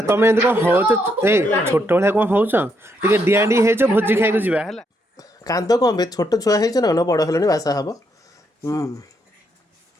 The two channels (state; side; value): normal; both; correlation 0.76